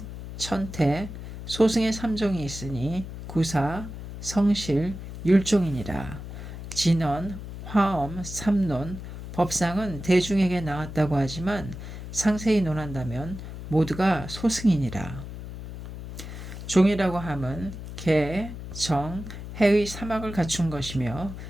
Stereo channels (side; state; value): left; noise; hum, 10 dB below the sound